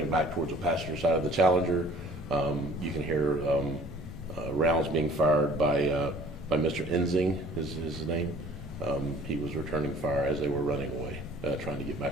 back towards the passenger side of the Challenger. You can hear rounds being fired by Mr. Enzing, is his name. He was returning fire as they were running away, trying to get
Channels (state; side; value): normal; both; correlation 0.51